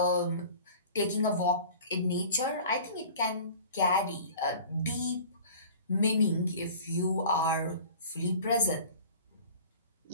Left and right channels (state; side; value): inverted; both; correlation -0.43